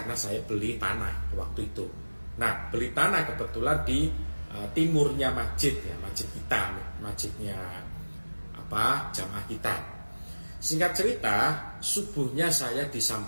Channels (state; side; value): inverted; both; correlation -1.00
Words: saya beli tanah waktu itu. Nah, beli tanah kebetulan di timurnya masjid ya, masjid kita, masjidnya jamaah kita. Singkat cerita, subuhnya saya